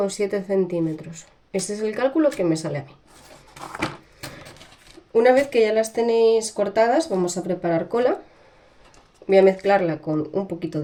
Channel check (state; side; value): identical; both; correlation 1.00